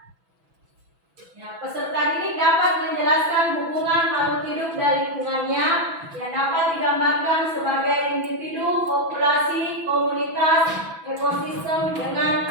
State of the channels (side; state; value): left; late; 6.1 ms